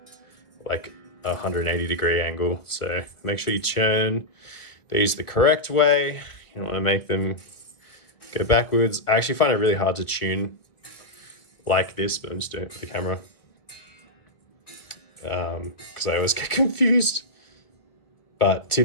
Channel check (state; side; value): late; right; 1.5 ms